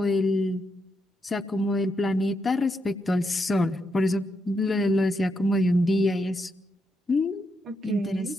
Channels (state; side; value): normal; both; correlation 0.81